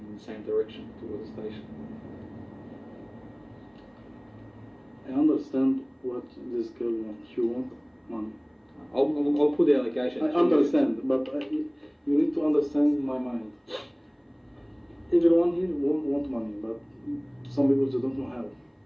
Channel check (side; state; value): both; identical; correlation 1.00